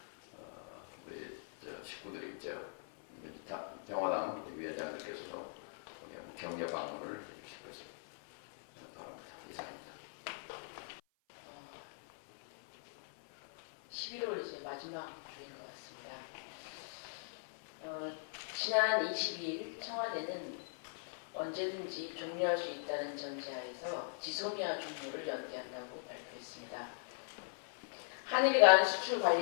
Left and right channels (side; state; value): right; silent; 51 dB below the other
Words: 우리 식구들이 이제 평화당 위원장님께서도 격려 방문을 해주실 것을 바랍니다. 이상입니다. 11월 이제 마지막 주인 것 같습니다. 지난 22일 청와대는 언제든지 종료할 수 있다는 전제하에서 지소미아 종료를 연기한다고 발표했습니다. 한일 간 수출